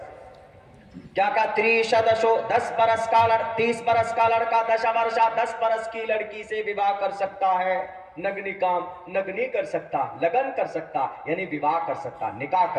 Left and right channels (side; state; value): both; identical; correlation 1.00